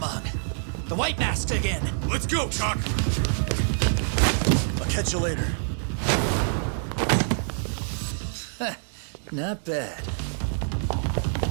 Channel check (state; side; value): silent; left; digital silence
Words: The White Mask again. Let's go, Chuck! I'll catch you later. Not bad.